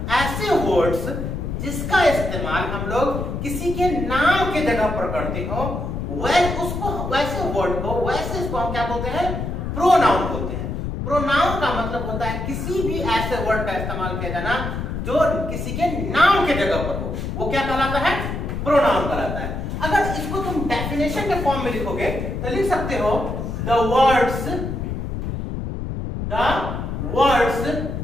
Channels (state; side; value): noise; left; rumble, 4 dB below the sound